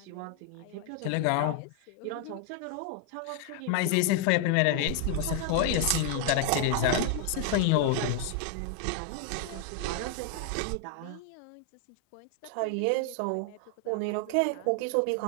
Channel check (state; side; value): different; both; correlation 0.00